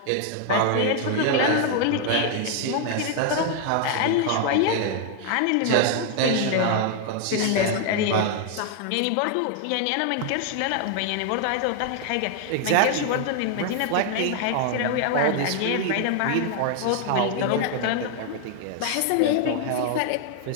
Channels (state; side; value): different; both; correlation 0.00